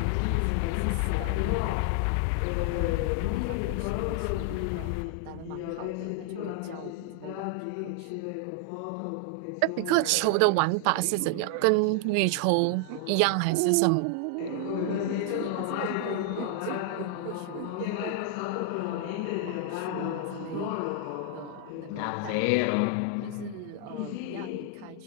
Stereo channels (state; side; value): different; both; correlation 0.00